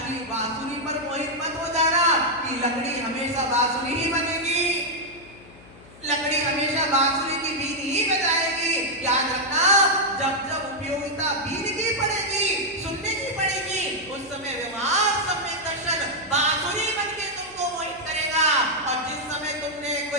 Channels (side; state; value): left; noise; hum, 22 dB below the sound